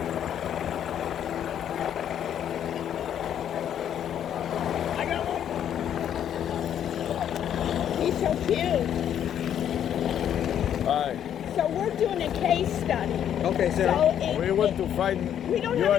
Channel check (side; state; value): right; quieter; 9.7 dB